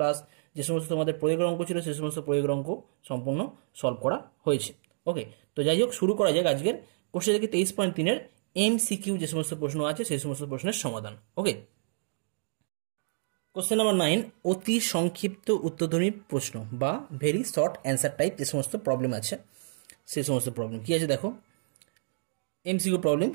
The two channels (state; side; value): silent; left; digital silence